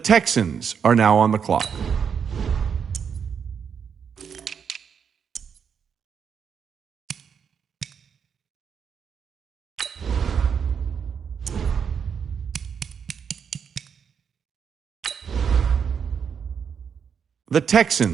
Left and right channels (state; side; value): quieter; left; 7.0 dB